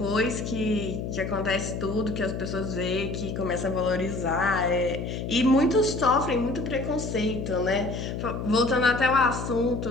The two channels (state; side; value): noise; left; hum, 5 dB below the sound